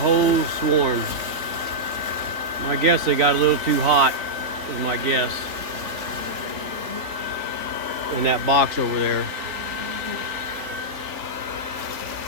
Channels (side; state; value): left; late; 3.7 ms